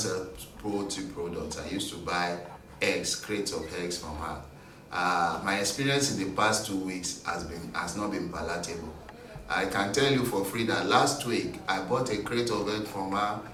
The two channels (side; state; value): both; identical; correlation 1.00